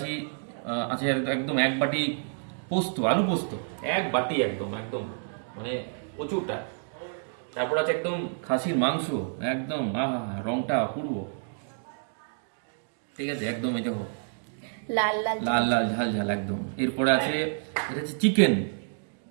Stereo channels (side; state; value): left; silent; digital silence